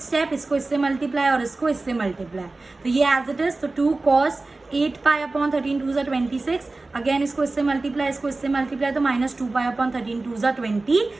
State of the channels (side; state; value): left; quieter; 3.3 dB